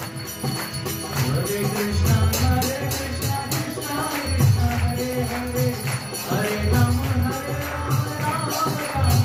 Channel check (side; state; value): both; identical; correlation 1.00